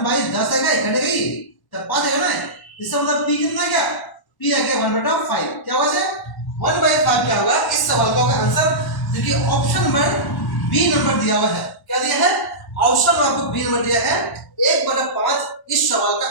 आएगा, कटेगा ही तब 5 आएगा ना, इसका मतलब p कितना गया, p आ गया 1/5। क्या होगा से 1/5 क्या होगा, इस सवाल का होगा आंसर, जो कि ऑप्शन नंबर बी नंबर दिया हुआ है। क्या दिया है, ऑप्शन नंबर बी नंबर दिया है, 1/5 इस सवाल का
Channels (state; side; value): late; right; 1.1 ms